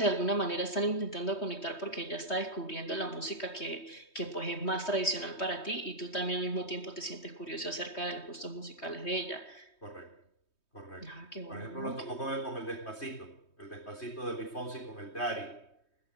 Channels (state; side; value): late; right; 3.2 ms